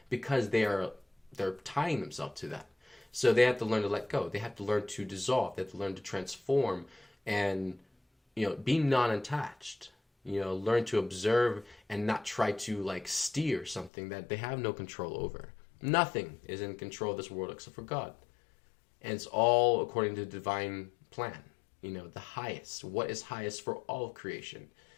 because they're tying themselves to that. So they have to learn to let go. They have to learn to dissolve. They have to learn to transform and be non-attached, learn to observe and not try to steer something that they have no control over. Nothing is in control of this world except for God. And it's all according to the divine plan, the highest, what is highest for all of creation.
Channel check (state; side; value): drops out; right; at 13.9 s